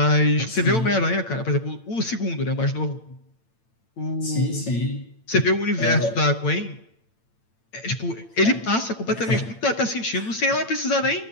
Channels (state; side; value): late; right; 8.9 ms